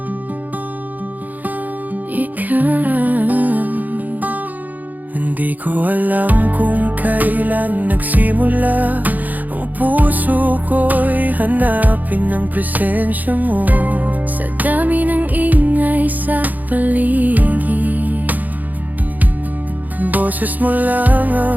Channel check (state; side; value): late; left; 0.082 ms